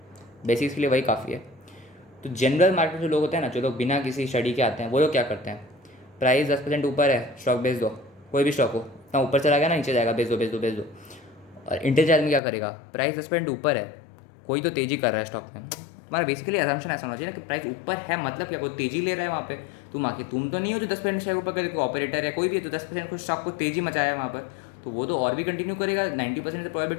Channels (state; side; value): drops out; right; at 12.4 s